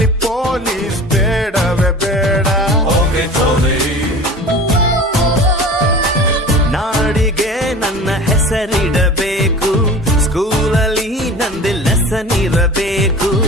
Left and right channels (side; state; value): both; normal; correlation 0.39